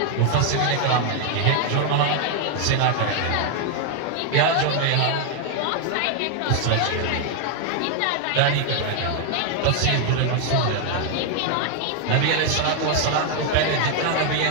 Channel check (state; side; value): different; both; correlation 0.00